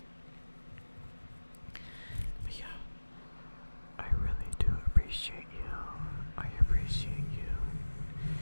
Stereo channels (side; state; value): both; inverted; correlation -1.00